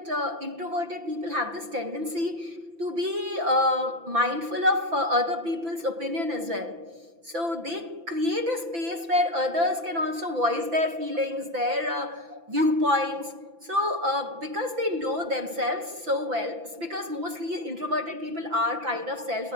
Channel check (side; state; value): left; late; 5.9 ms